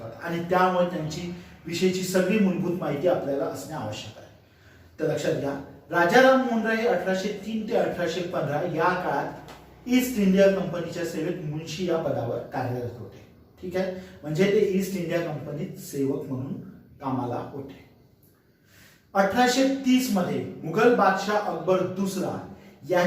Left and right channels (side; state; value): both; identical; correlation 1.00